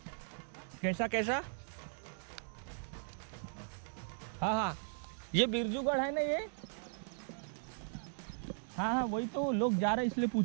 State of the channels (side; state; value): left; silent; digital silence